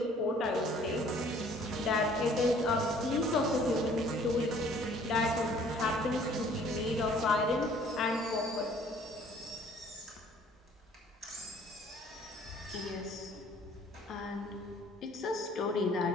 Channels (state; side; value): normal; both; correlation 0.56